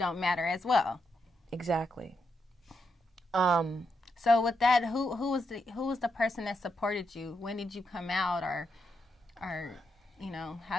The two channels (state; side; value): normal; both; correlation 0.82